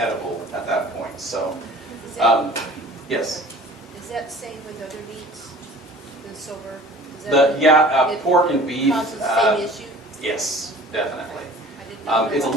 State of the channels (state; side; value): normal; both; correlation 0.46